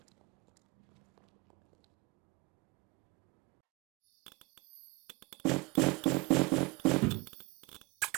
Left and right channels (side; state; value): left; quieter; 26.2 dB